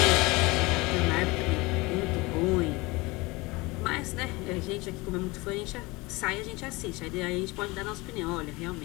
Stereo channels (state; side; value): quieter; right; 23.4 dB